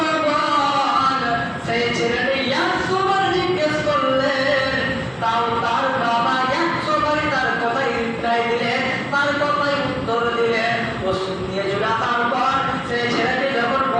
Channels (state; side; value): identical; both; correlation 1.00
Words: বল। সেই ছেলেটি 100 বার জিজ্ঞেস করলেন, তাও তার বাবা 100 বারই তার কথাই রিপ্লাই দিলেন, তার কথাই উত্তর দিলেন। ওষুধ নিয়ে চলে তারপর সেই ছেলেটি যখন